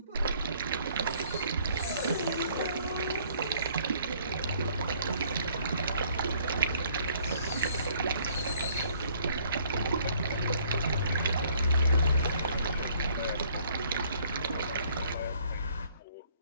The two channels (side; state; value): both; inverted; correlation -0.61